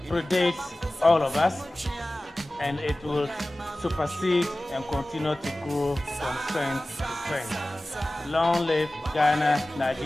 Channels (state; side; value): normal; both; correlation 0.97